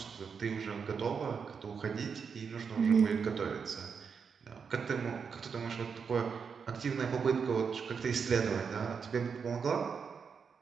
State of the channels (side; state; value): left; quieter; 6.1 dB